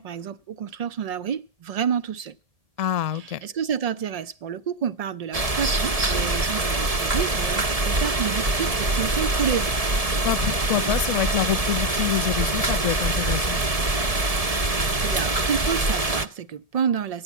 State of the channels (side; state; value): left; late; 1.7 ms